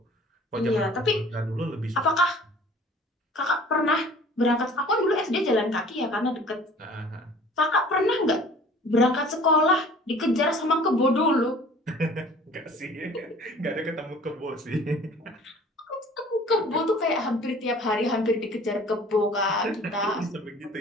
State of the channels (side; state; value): both; normal; correlation 0.48